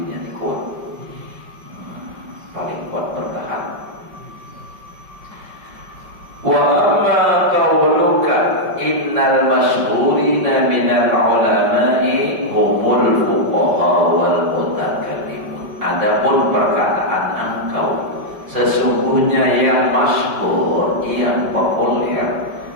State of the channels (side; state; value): left; late; 5.2 ms